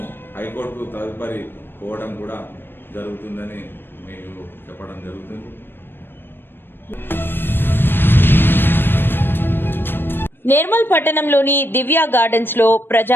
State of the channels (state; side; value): late; right; 0.099 ms